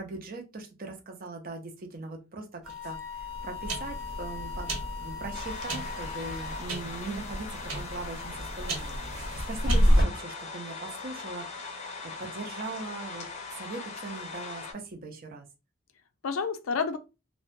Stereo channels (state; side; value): normal; both; correlation 0.62